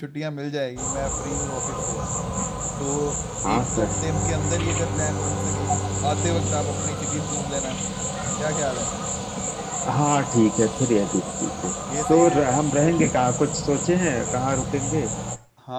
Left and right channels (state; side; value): identical; both; correlation 1.00